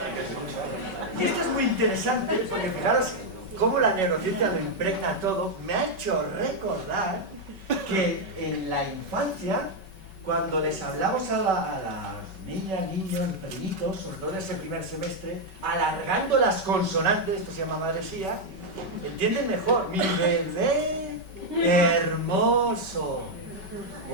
Y esto es muy interesante, porque fijaros cómo la neurociencia lo impregna todo. Me ha hecho recordar que en la infancia, cuando les hablamos a las niñas, niños, pequeñitos, sobre todo en ese primer semestre, alargando las consonantes, esto se llama madresía, entienden mejor. Mi bebé hermoso.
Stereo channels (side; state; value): left; late; 5.3 ms